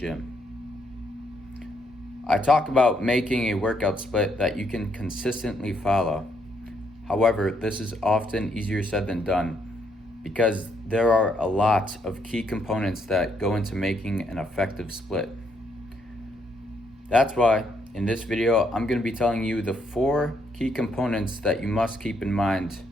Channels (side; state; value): both; normal; correlation 0.74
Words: I talk about making a workout split that you can consistently follow. However, this is often easier said than done because there are a lot of key components that go into making an effective split. That's why in this video, I'm going to be telling you the 4 key components that you must keep in mind